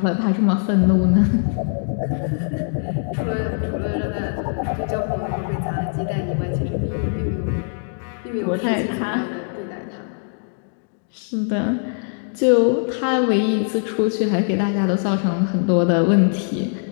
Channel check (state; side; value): silent; right; digital silence